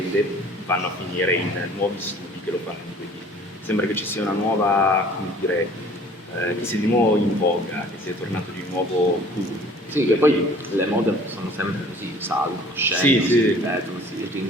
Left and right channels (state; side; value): normal; both; correlation 0.50